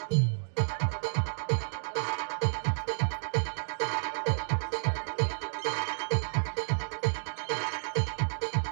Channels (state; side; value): silent; left; digital silence